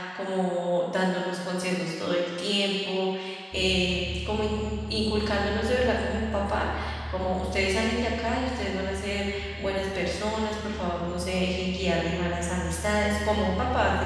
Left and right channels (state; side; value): identical; both; correlation 1.00